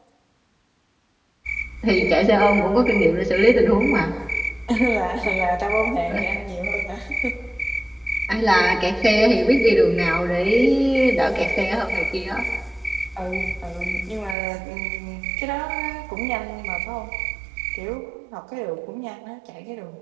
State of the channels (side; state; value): left; drops out; at 14.4 s